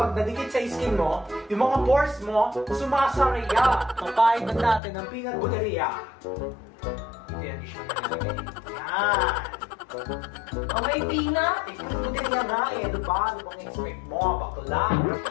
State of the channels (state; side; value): drops out; right; at 4.8 s